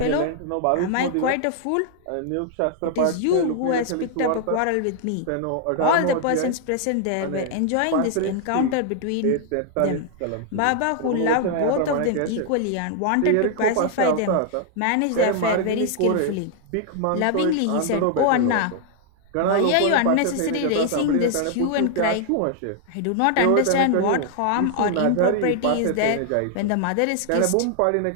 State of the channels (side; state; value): both; different; correlation 0.00